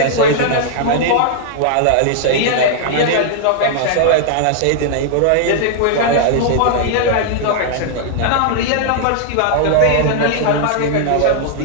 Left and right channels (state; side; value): different; both; correlation -0.01